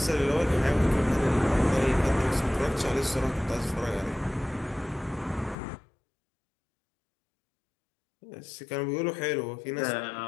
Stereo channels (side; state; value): right; drops out; at 5.6 s